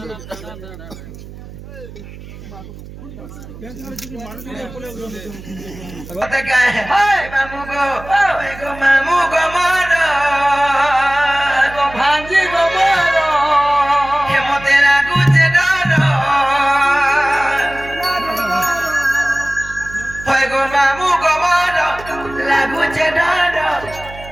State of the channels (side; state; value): right; noise; hum, 15 dB below the sound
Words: पता क्या है मामू गो मामू गो मोरो গো ভাঙ্গি গো মারো के मते लागू जे डरो होय गो मामू गो मोरो लागू जे डरो